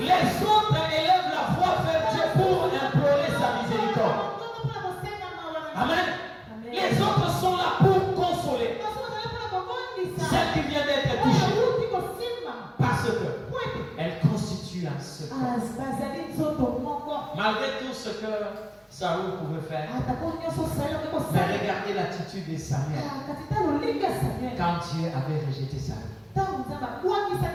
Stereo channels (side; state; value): both; identical; correlation 1.00